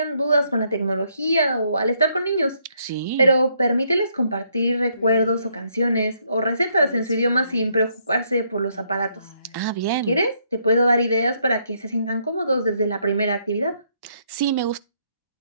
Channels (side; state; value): both; inverted; correlation -0.72